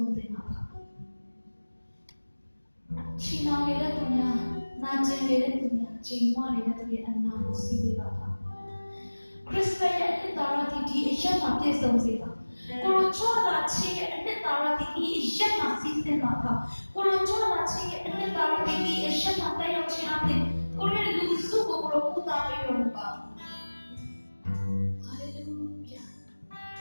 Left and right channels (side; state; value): both; inverted; correlation -1.00